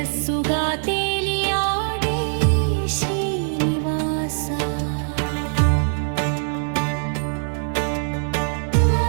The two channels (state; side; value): silent; left; digital silence